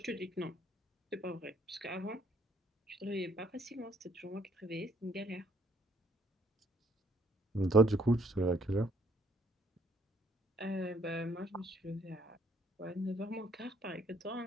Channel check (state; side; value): normal; both; correlation 0.66